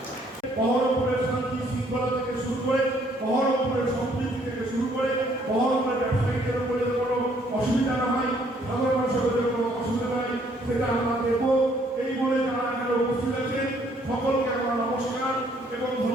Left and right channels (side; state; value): both; normal; correlation 0.65